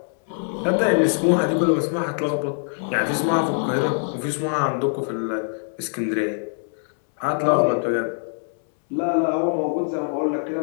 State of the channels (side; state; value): right; silent; digital silence